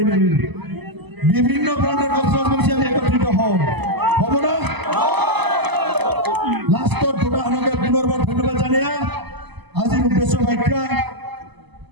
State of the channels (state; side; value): late; left; 0.99 ms